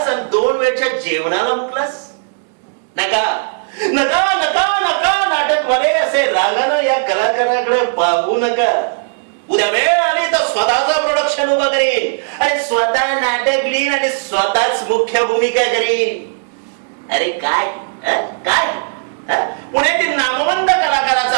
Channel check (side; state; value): left; silent; 69 dB below the other